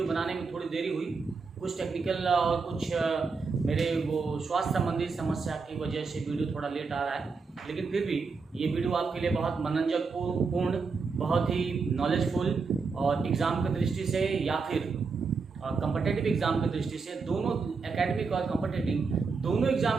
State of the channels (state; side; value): quieter; left; 4.7 dB